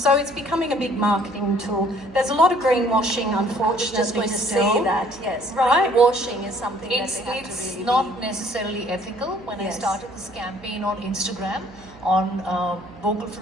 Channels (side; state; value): right; noise; hum, 22 dB below the sound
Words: it's becoming a big marketing tool. There's a lot of greenwashing, unfortunately, Just going to still. say that, yes. Right. Greenwashing is something It's that they have to really not necessarily ethical. When I Yes. started this campaign on Instagram on vocal